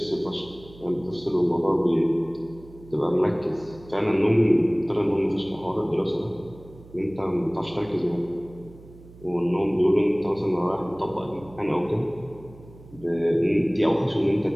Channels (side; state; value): right; noise; hum, 21 dB below the sound